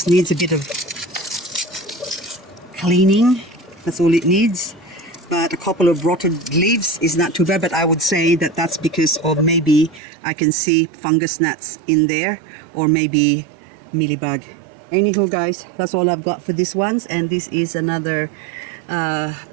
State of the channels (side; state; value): left; drops out; at 10.0 s